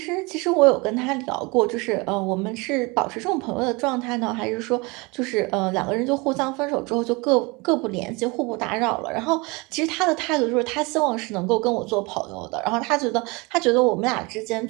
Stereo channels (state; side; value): quieter; left; 26.5 dB